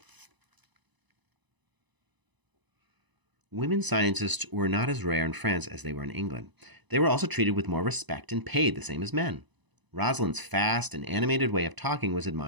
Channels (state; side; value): late; left; 1.0 ms